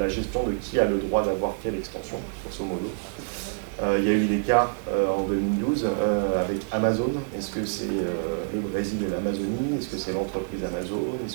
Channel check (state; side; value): silent; left; digital silence